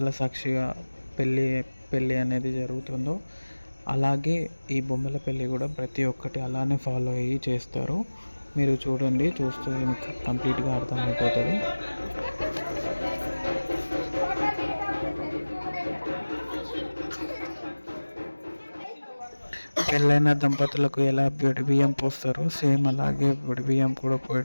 సాక్షిగా పెళ్ళి అనేది జరుగుతుందో అలాగే ఈ బొమ్మల పెళ్ళి కూడా ప్రతి ఒక్కటి అలానే ఫాలో అయ్యి చేస్తారు. మీరు చూడండి, చూస్తే మీకు కంప్లీట్గా అర్థమైపోతుంది. పెళ్ళైన దంపతులకు ఎలా పొడి బియ్యం పోస్తారో సేమ్ అలాగే పొడి బియ్యం కూడా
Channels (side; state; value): both; inverted; correlation -1.00